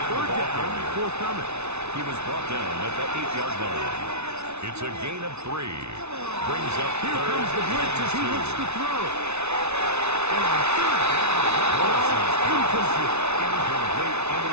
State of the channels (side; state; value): left; late; 0.81 ms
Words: down, forthcoming. He was brought down at the 8-yard line. It's a gain of 3. Brings up Here 3rd comes the blitz as he and 2. looks to throw. And on 3rd down, incomplete. Incomplete in